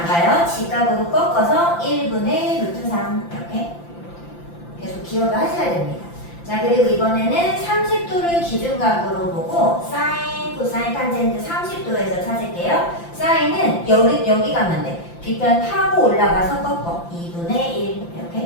가요. 직각으로 꺾어서 1분의 루트 3 이렇게. 계속 기억을 하셔야 됩니다. 자, 그리고 이번에는 30도를 기준각으로 보고 사인, 코사인, 탄젠트 30도에서 찾을게요. 사인은 여기 가면 돼. 빗변 타고 올라가서 꺾어. 2분의 1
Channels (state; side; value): late; right; 5.8 ms